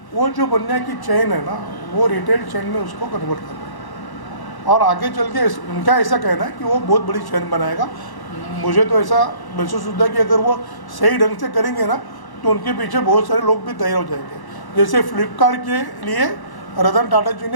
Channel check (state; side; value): late; right; 1.1 ms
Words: वो जो बनिया की चेन है ना, वो रिटेल चेन में उसको कन्वर्ट कर रहा है। और आगे चल के उनका ऐसा कहना है कि वो बहुत बड़ी चेन बनाएगा। मुझे तो ऐसा महसूस होता है कि अगर वो सही ढंग से करेंगे ना, तो उनके पीछे बहुत सारे लोग भी तैयार हो जाएंगे। जैसे फ्लिपकार्ट के लिए रतन टाटा जी